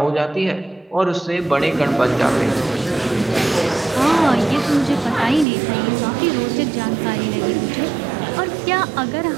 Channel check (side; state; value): left; drops out; at 5.5 s